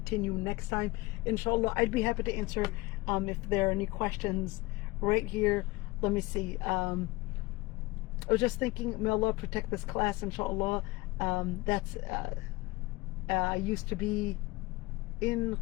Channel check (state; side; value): quieter; right; 21.3 dB